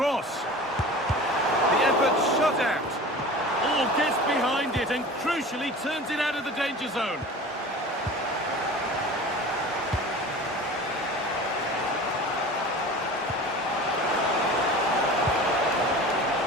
The effort shut out. Oh, gets behind it and crucially turns it out of the danger zone.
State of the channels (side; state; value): both; normal; correlation 0.37